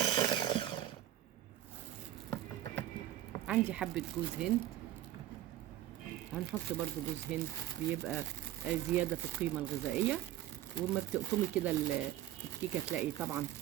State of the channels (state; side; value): quieter; left; 13.4 dB